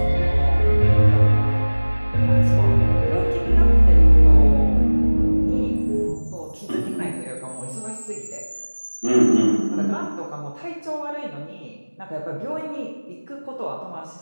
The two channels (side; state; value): both; inverted; correlation -1.00